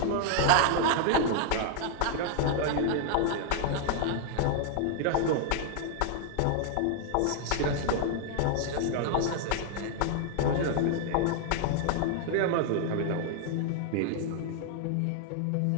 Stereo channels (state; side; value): different; both; correlation -0.01